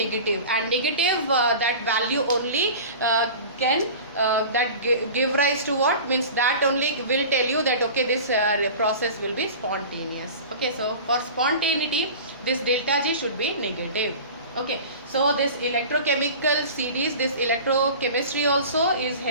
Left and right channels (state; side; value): inverted; both; correlation -0.37